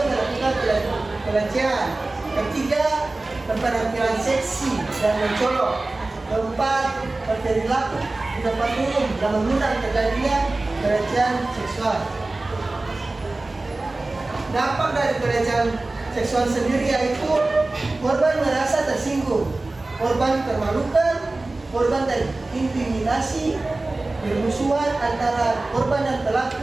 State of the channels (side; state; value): left; quieter; 3.1 dB